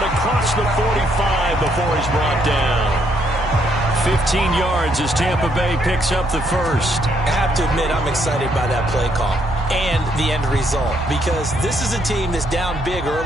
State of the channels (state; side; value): noise; right; hum, 10 dB below the sound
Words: across the 45 before he's brought down. 15 yards as Tampa Bay picks up the first. I have to admit, I'm excited by that play call and the end result, because this is a team that's down big